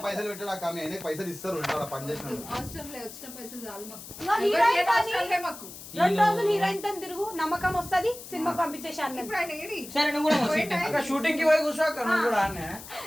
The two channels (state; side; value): noise; left; hiss, 14 dB below the sound